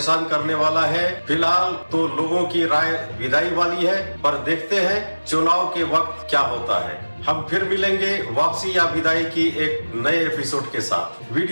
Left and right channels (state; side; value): inverted; both; correlation -1.00